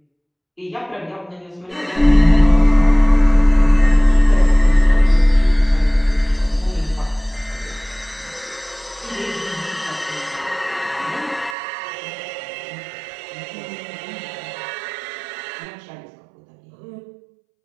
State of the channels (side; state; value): left; drops out; at 11.6 s